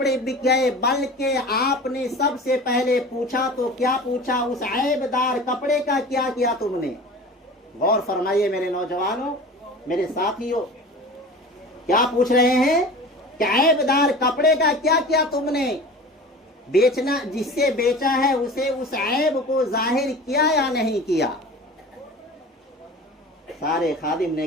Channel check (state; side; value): normal; both; correlation 0.37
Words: बिक गए, बल्कि आपने सबसे पहले पूछा तो क्या पूछा? उस ऐबदार कपड़े का क्या किया तुमने? गौर फरमाइए मेरे नौजवानों, मेरे साथियों, क्या पूछ रहे हैं कि ऐबदार कपड़े का क्या किया तुमने? बेचना, जिससे बेचा है उसे उस ऐब को जाहिर किया या नहीं किया? सारे खादिम ने